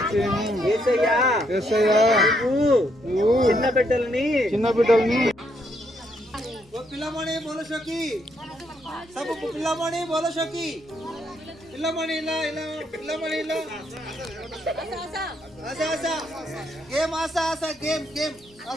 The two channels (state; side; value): normal; both; correlation 0.74